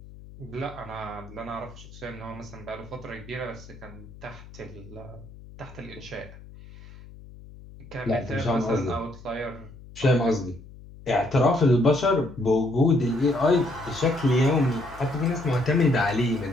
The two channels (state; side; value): noise; left; hum, 18 dB below the sound